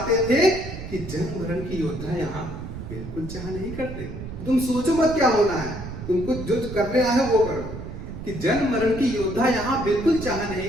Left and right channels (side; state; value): right; noise; rumble, 9 dB below the sound